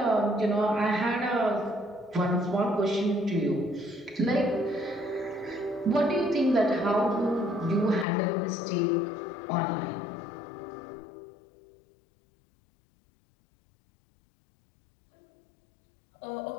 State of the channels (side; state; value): right; drops out; at 8.1 s